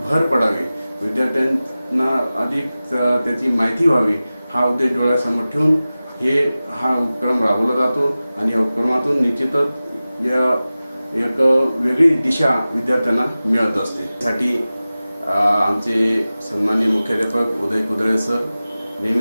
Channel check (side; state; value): both; inverted; correlation -0.96